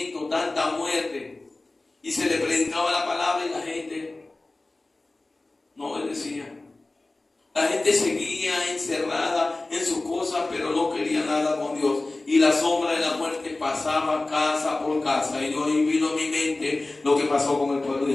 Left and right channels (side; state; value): right; quieter; 3.0 dB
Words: tanta muerte? Y se le predicaba la palabra y la gente no obedecía. La gente seguía encerrada en sus cosas, pero no quería nada con Dios. Y la sombra de la muerte pasaba casa por casa. Y yo vino a mi mente lo que pasó con el pueblo de